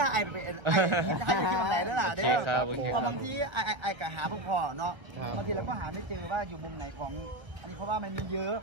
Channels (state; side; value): late; left; 1.0 ms